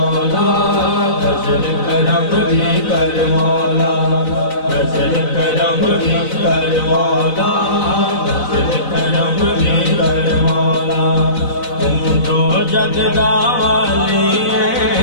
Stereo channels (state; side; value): late; right; 4.0 ms